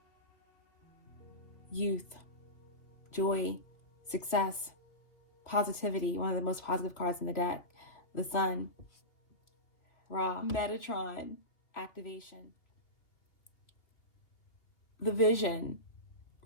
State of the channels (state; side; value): late; right; 2.8 ms